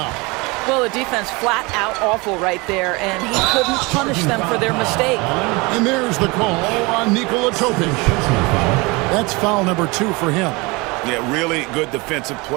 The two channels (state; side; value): quieter; left; 25.7 dB